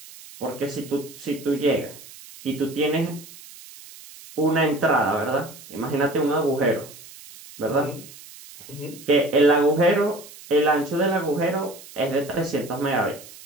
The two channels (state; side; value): noise; right; hiss, 18 dB below the sound